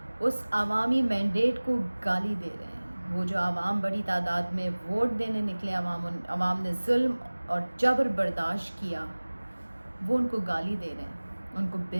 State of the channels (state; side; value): inverted; both; correlation -1.00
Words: اس عوامی مینڈیٹ کو گالی دے رہے ہیں. وہ جو عوام بڑی تعداد میں ووٹ دینے نکلے, عوام نے ظلم اور جبر برداشت کیا, وہ ان کو گالی دے رہے ہیں, ان کو بے